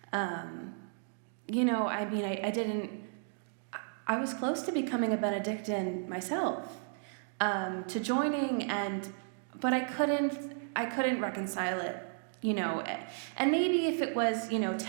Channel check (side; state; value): left; silent; digital silence